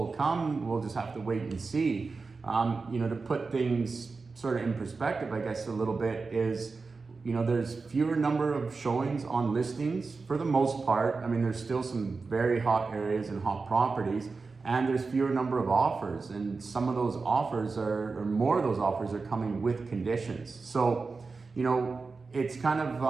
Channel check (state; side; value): quieter; left; 4.3 dB